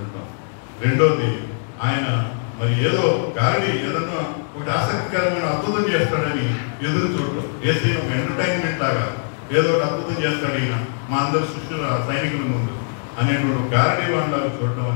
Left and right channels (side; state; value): right; silent; digital silence